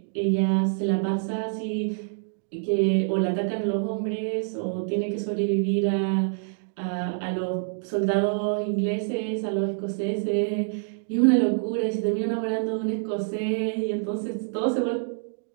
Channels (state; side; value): silent; left; digital silence